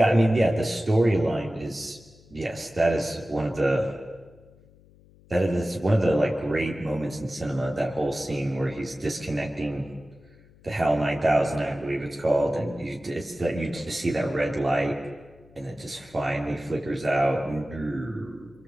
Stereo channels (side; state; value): left; noise; hum, 27 dB below the sound